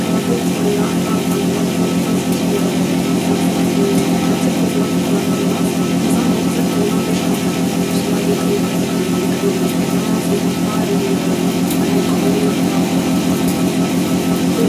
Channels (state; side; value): identical; both; correlation 1.00